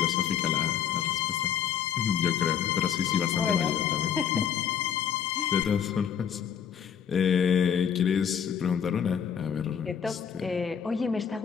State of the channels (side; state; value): right; quieter; 8.2 dB